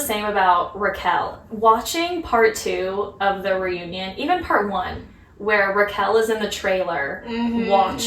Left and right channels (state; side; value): identical; both; correlation 1.00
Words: about Raquel. Watching part 2 of the reunion, even part 1, where Raquel is in the trailer